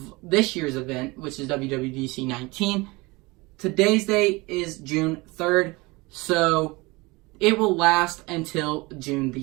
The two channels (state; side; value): quieter; left; 23.9 dB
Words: this year's event, which is WWDC 19, today's date is June 3rd. So, it will last until June the